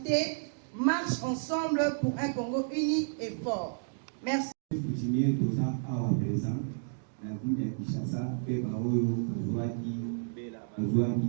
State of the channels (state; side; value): silent; left; digital silence